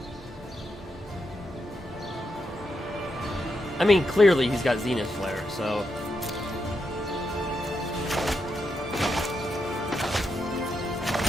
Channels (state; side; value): normal; both; correlation 0.83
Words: I mean, clearly he's got Zenith Flare, so...